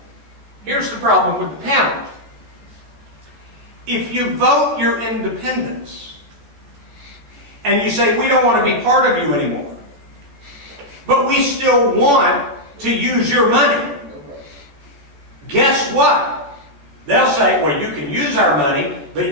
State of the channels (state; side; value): late; left; 14 ms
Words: Here's the problem with the pound. If you vote your independence and you say, we don't want to be part of you anymore, but we still want to use your money, guess what? They'll say, well, you can use our money,